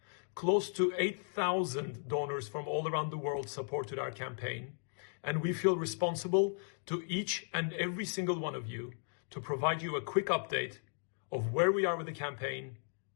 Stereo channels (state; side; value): silent; right; 54 dB below the other